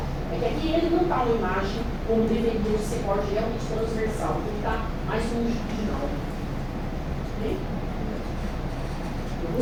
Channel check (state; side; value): identical; both; correlation 1.00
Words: É que aqui ele não está uma imagem como deveria ser corte realmente transversal, porque ele está mais longitudinal. Ok?